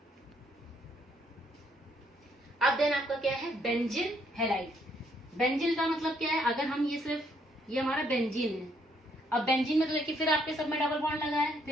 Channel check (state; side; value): normal; both; correlation 0.70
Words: अब देन आपका क्या है, बेंजिल हैलाइड। बेंजिल का मतलब क्या है, अगर हम ये सिर्फ ये हमारा बेंजीन है, अब बेंजीन में तो देखिए फिर आपके सब में डबल बॉन्ड लगा है,